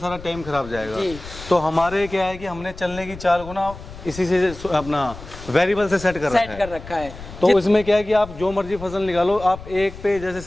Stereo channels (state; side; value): noise; left; rumble, 15 dB below the sound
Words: टाइम खराब जाएगा। जी। तो हमारे क्या है कि हमने चलने की चाल को ना इसी से अपना वेरिएबल से सेट कर रखा है। तो इसमें क्या है कि आप जो मर्जी फसल निकालो, आप एक पे जैसे